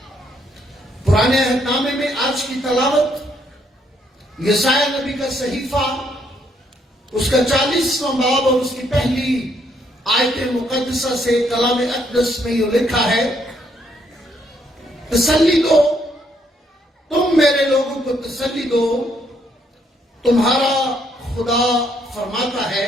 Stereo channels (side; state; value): both; normal; correlation 0.72